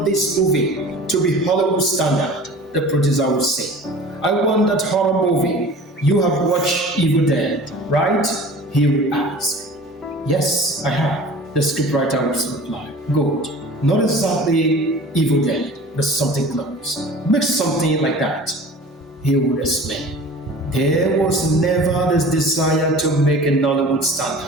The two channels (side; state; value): both; normal; correlation 0.42